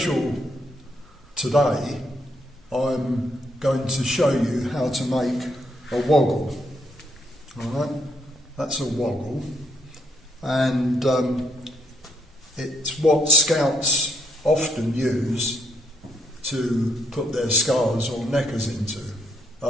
today, I'm going to show you how to make a woggle. Alright, that's a woggle, and it's what scouts often use to put their scarves or neckers into.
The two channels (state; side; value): normal; both; correlation 0.73